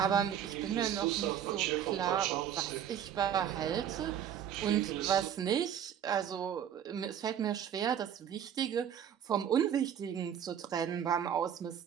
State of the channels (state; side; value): quieter; left; 9.3 dB